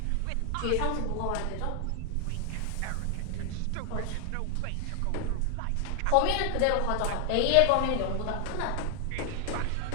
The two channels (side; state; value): both; different; correlation 0.00